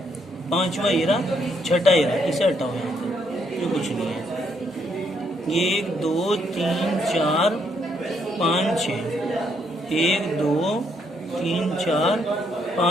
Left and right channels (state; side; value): normal; both; correlation 0.73